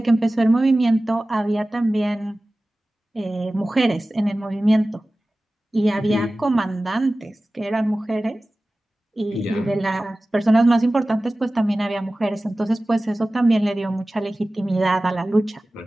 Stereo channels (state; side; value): normal; both; correlation 0.97